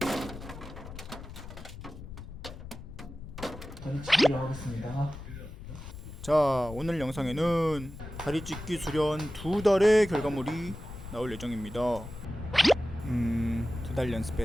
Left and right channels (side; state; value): left; noise; rumble, 12 dB below the sound